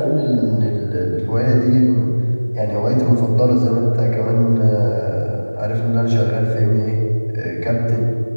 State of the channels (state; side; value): inverted; both; correlation -1.00